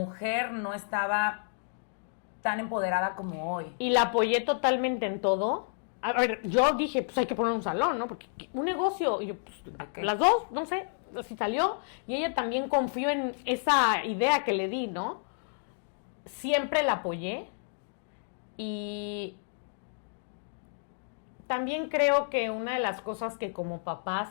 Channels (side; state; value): right; silent; digital silence